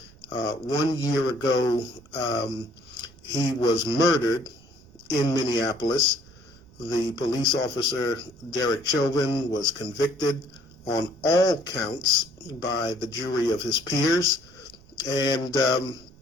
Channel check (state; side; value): noise; right; rumble, 25 dB below the sound